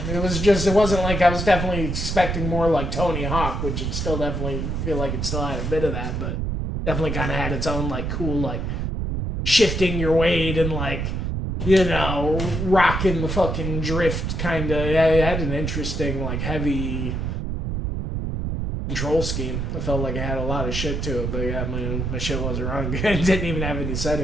It was just, it wasn't like I was definitely expecting more like Tony Hawk, which it still definitely feel like it still had a bit of that, but definitely kind of had its own, like, cool, like, shifting your weight and, like, you know, rocking the fucking drift kind of. Yeah, it had an interesting, like, heavy control scheme. I felt like it had a lot of shit to it, but yeah, my shit wasn't running good. It didn't even have any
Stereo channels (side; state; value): right; noise; rumble, 2 dB below the sound